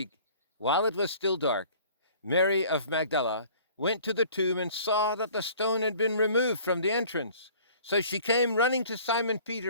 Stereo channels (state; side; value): inverted; both; correlation -0.51